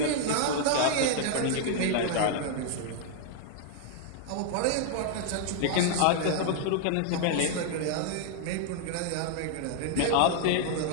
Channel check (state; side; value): different; both; correlation -0.01